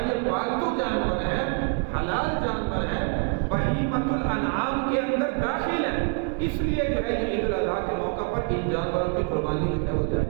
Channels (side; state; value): left; quieter; 35.2 dB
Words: یہ پالتو جانور ہیں, حلال جانور ہیں, بہیمۃ الانعام کے اندر داخل ہے، اس لیے جو ہے یہ عید الاضحیٰ کے موقع پر ان جانوروں کی قربانی جو ہے وہ